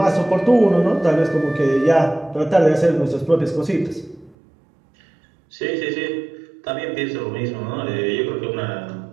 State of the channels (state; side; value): drops out; left; at 4.4 s